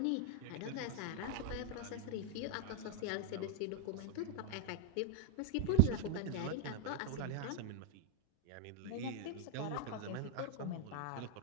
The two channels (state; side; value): different; both; correlation 0.00